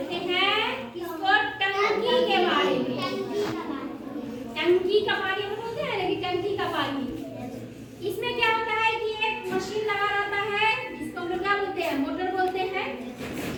हैं इसको टंकी के बारे में। टंकी का पानी हम बोलते हैं, लेकिन टंकी का पानी इसमें क्या होता है कि एक मशीन लगा रहता है जिसको हम लोग क्या बोलते हैं, मोटर बोलते हैं।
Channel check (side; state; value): both; identical; correlation 1.00